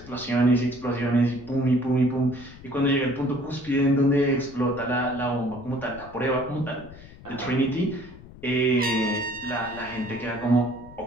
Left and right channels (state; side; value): noise; left; rumble, 19 dB below the sound